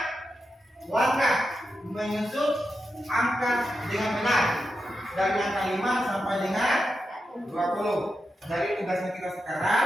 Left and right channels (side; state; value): both; normal; correlation 0.88